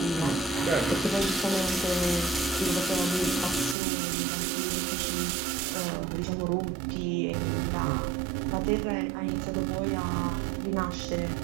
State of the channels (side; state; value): left; drops out; at 3.8 s